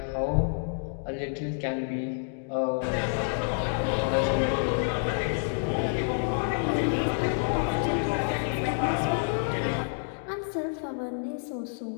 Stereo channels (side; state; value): right; silent; digital silence